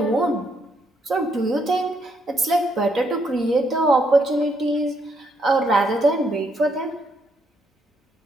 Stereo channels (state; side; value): normal; both; correlation 0.74